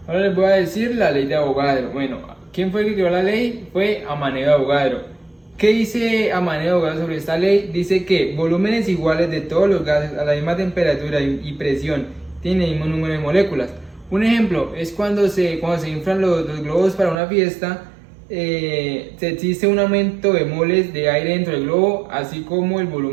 Ahora les voy a decir la ley de Avogadro. Bueno, ¿quién fue el que creó la ley? Fue Amaneo de Avogadro. ¿Qué dice Amaneo de Avogadro sobre esta ley? Dice que volúmenes iguales de todos los gases a la misma temperatura y presión tienen el mismo número de moléculas. Un ejemplo es cuando se inflan los globos para una fiesta, se existe un aumento de moles de aire dentro del globo, así como el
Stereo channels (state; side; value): drops out; left; at 17.2 s